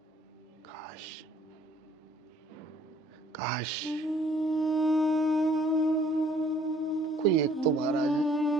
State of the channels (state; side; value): normal; both; correlation 0.59